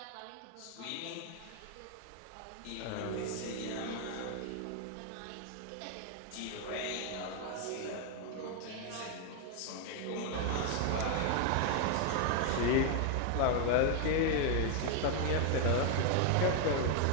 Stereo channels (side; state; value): both; different; correlation 0.00